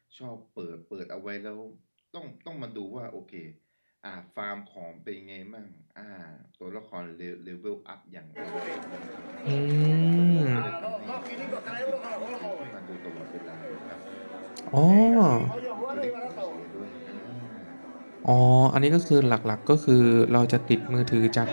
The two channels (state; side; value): inverted; both; correlation -1.00